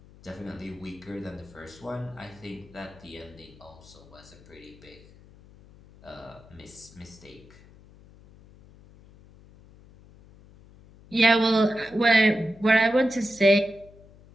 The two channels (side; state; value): left; noise; hum, 23 dB below the sound